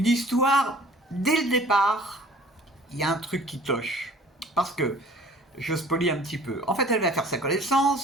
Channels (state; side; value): normal; both; correlation 0.50